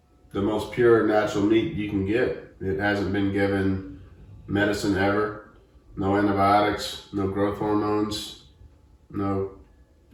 most pure natural meat you can get. It hasn't been given medicine ever. No antibiotics, no growth hormones, no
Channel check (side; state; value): both; identical; correlation 1.00